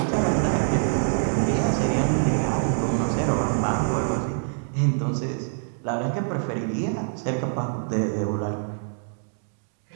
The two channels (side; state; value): left; silent; digital silence